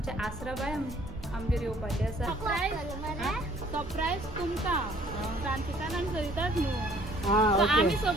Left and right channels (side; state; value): both; normal; correlation 0.58